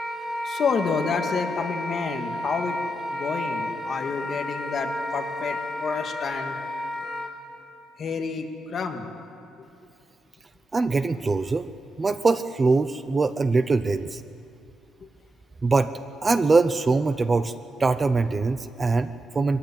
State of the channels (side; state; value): both; normal; correlation 0.88